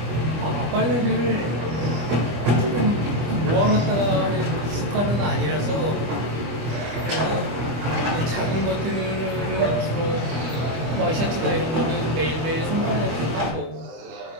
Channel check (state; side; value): late; left; 25 ms